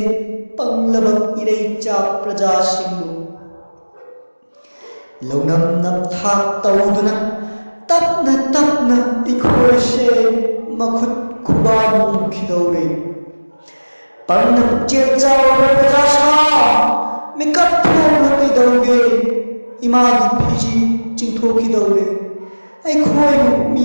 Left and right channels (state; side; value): inverted; both; correlation -1.00